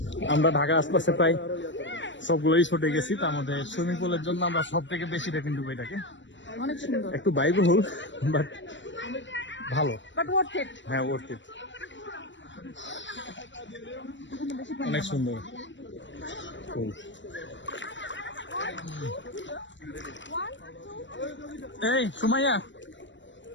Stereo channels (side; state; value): right; late; 0.54 ms